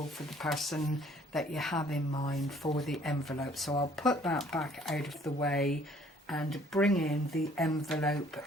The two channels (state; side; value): normal; both; correlation 0.58